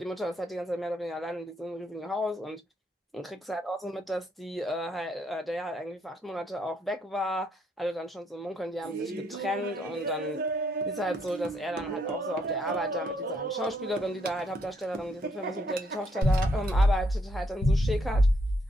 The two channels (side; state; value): both; normal; correlation 0.73